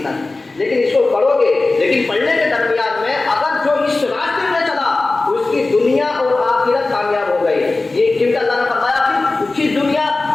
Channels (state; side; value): quieter; right; 3.3 dB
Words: تک، لیکن اس کو پڑھو گے، لیکن پڑھنے کے درمیان میں اگر جو اس راستے میں چلا اس کی دنیا اور آخرت کامیاب ہو گئی۔ یہ کیونکہ اللہ نے فرمایا کہ اس کی دنیا